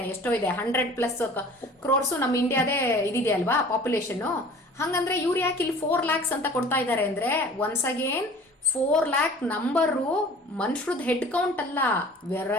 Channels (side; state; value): both; normal; correlation 0.46